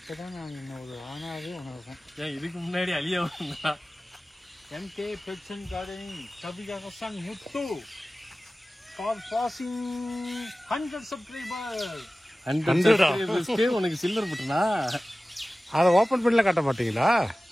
நான் என்ன ஒரு ஆனாவே உணர்றேன். ஏன் இதுக்கு முன்னாடி அழிய வந்தா? MK kitchen gardening Kaviyarasan Muthu for passing 100 subscribers. 100 subscribersக்கு உனக்கு சில்வர் பட்டனா? அதை ஓபன் பண்ணல காட்ட மாட்டீங்களா?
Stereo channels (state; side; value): normal; both; correlation 0.96